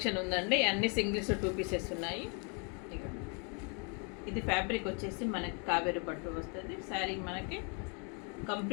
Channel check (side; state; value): right; quieter; 36.7 dB